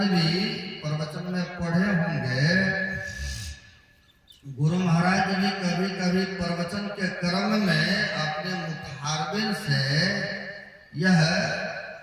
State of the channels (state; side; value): identical; both; correlation 1.00